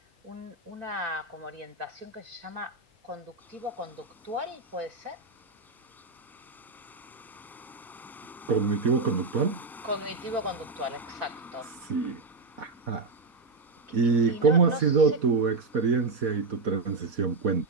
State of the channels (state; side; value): quieter; left; 3.7 dB